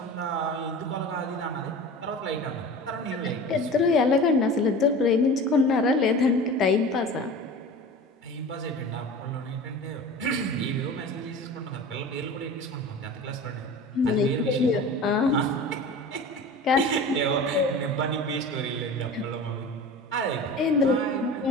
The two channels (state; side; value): normal; both; correlation 0.36